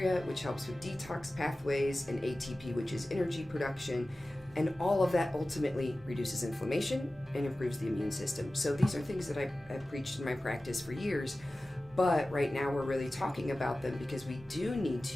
which helps with detox pathways, and ATP, which is energy production. And all of that ultimately reduces inflammation and improves the immune system. So these are things that I've preached in my practice for years. But right now we're really talking about them because we do need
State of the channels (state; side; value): normal; both; correlation 0.96